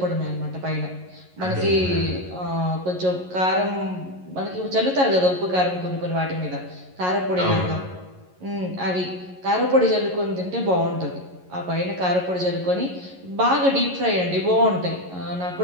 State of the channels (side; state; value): left; late; 11 ms